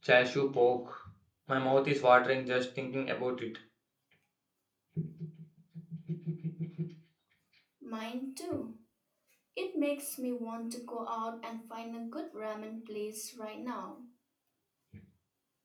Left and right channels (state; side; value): identical; both; correlation 1.00